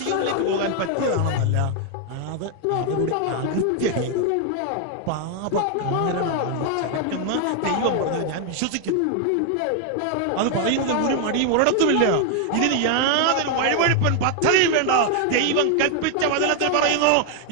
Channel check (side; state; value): both; different; correlation 0.00